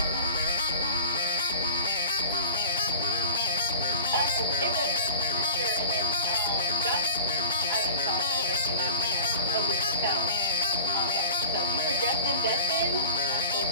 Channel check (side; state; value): both; inverted; correlation -0.38